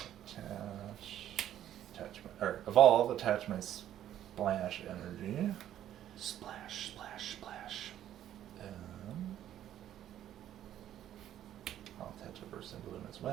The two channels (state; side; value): quieter; left; 11.5 dB